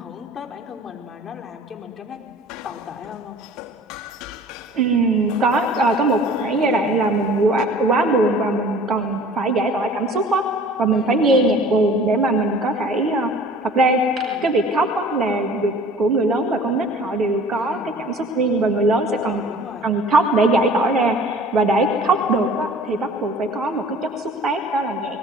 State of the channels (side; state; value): both; normal; correlation 0.47